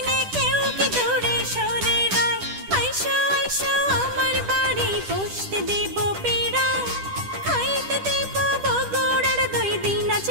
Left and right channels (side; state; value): left; late; 10 ms